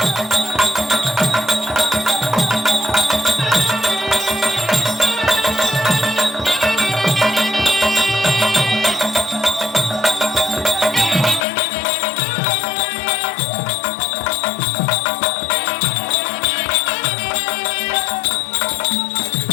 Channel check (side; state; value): right; drops out; at 11.5 s